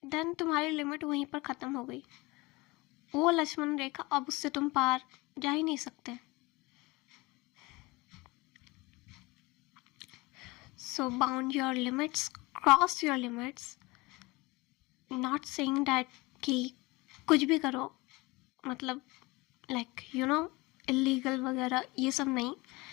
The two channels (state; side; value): quieter; right; 23.1 dB